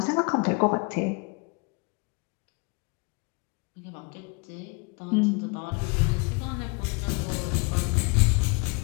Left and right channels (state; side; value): quieter; right; 31.1 dB